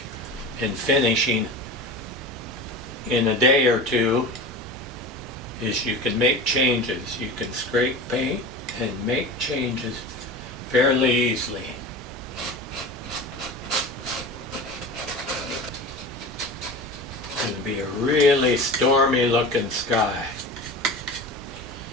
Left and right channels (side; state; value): both; normal; correlation 0.31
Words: and finishing in a day or two is you can make changes. You can scrape paint and make changes fairly easily. It's going to be a really stormy looking sky